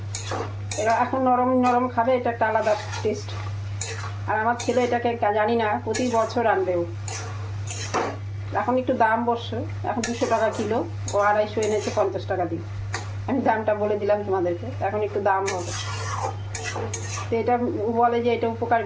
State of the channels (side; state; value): both; identical; correlation 1.00